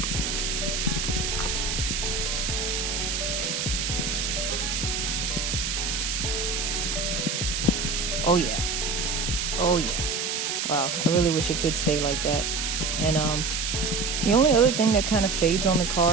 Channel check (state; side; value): noise; right; hiss, 1 dB below the sound